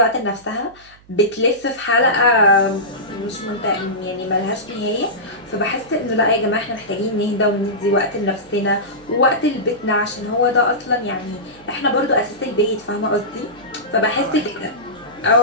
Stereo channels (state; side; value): noise; right; hum, 27 dB below the sound